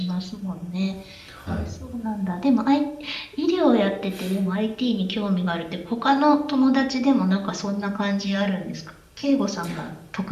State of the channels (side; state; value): both; identical; correlation 1.00